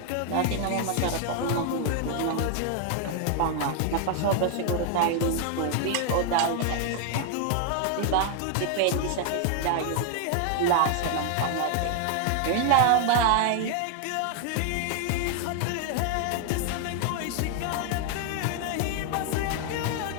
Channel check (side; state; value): both; different; correlation 0.00